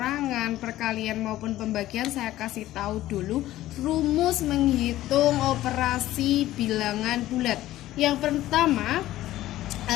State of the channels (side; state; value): right; quieter; 14.9 dB